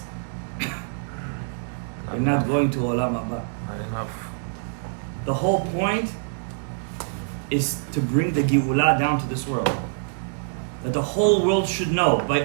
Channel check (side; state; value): left; silent; 61 dB below the other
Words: you're not going to olam haba. Not enough. The whole point is to bring the Geulah down to this world. That the whole world should know.